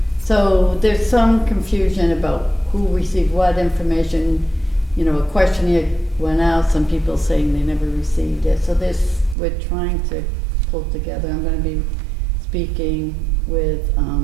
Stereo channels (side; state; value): left; drops out; at 9.3 s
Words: so there's some confusion about who received what information. You know, a questionnaire went out, some people saying they never received it. So we're trying to pull together. I'm gonna be speaking with